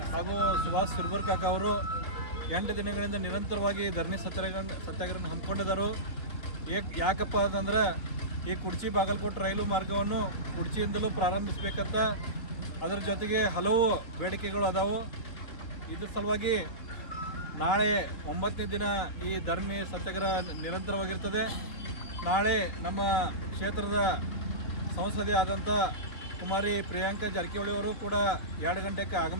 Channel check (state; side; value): late; right; 3.8 ms